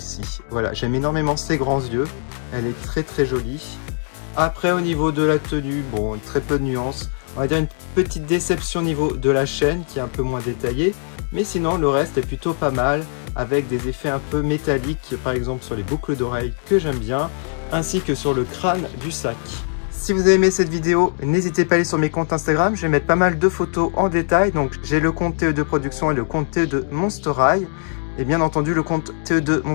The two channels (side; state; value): right; silent; 55 dB below the other